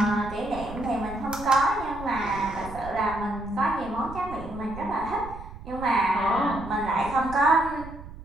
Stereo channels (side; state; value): right; noise; rumble, 14 dB below the sound